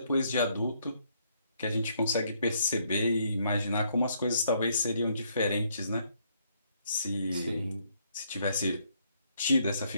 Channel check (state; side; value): inverted; both; correlation -0.71